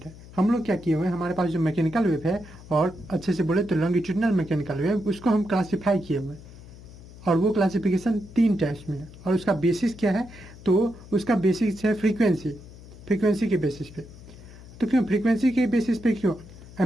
है। हम लोग क्या किए हुए हैं, हमारे पास जो मैकेनिकल वेव है, और अच्छे से बोले तो लॉन्गिट्यूडनल मैकेनिकल वेव, उसको हम क्लासीफाई किए हुए हैं। और वो क्लासिफिकेशन 3 टाइप्स में है। और उसका बेसिस क्या है? तो उसका बेसिस है फ्रीक्वेंसी के बेसिस पे। तो क्यों फ्रीक्वेंसी के बेसिस पे क्यों?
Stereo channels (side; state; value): left; noise; hum, 18 dB below the sound